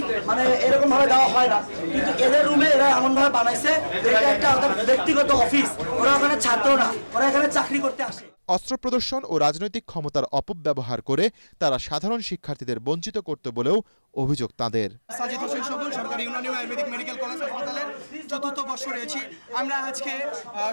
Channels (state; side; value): inverted; both; correlation -1.00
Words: এরকম ভাবে দেওয়া হয় না, কিন্তু এদের রুমে এরা এমন ভাবে বানাইছে এটা একটা ব্যক্তিগত অফিস। ওরা ওখানে ছাত্র না, ওরা এখানে চাকরি করতে আসে। অস্ত্র প্রদর্শন ও রাজনৈতিক ক্ষমতার অপব্যবহার করে তারা সাধারণ শিক্ষার্থীদের বঞ্চিত করতে বলেও অভিযোগ তাদের। সাজিদ হোসেন সবুজ, সরকারি ইউনানি আয়ুর্বেদিক মেডিকেল কলেজ হাসপাতালের ৪র্থ বর্ষ রয়েছি। আমরা আজকে